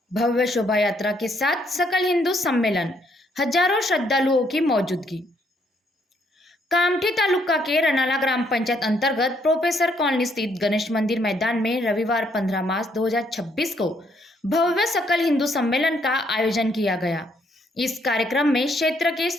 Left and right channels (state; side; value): normal; both; correlation 0.70